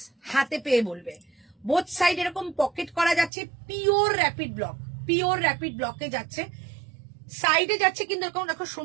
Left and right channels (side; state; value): left; drops out; at 3.3 s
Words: হাতে পেয়ে বলবে। বোথ সাইড এরকম পকেট করা যাচ্ছে, pure rapid block, pure rapid ব্লকে যাচ্ছে। সাইডে যাচ্ছে কিন্তু এরকম দেখো